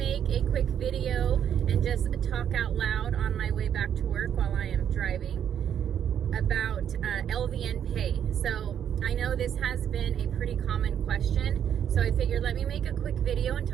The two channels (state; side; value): quieter; left; 9.1 dB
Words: a quick video and just talk out loud on my way back to work while I am driving about LVN pay. So I know this has been a pretty common question, so I figured let me make a quick video and